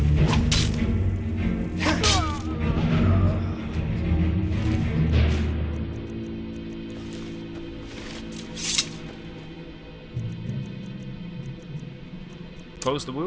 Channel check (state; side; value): identical; both; correlation 1.00